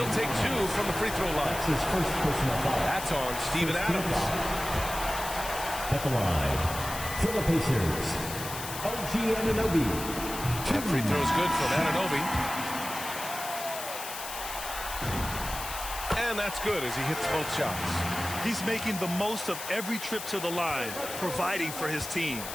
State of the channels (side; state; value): left; noise; hiss, 8 dB below the sound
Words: take 2 from the free throw line. That's his first personal foul. That's on Steven Adams. At the line for the Pacers, OG Anunoby. That free throw's good from Anunoby. And that's good as he hits both shots. He's making the most of every trip to the line, providing for his team.